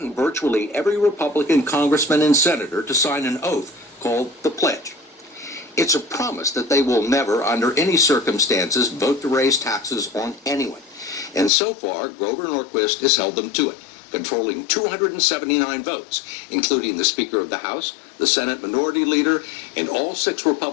virtually every Republican congressman and senator to sign an oath called the Pledge. It's a promise that they will never, under any circumstances, vote to raise taxes on anyone. And so far, Grover Norquist has held them to it, controlling 279 votes, including the Speaker of the House, the Senate Minority Leader, and all 6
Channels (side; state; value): right; drops out; at 11.5 s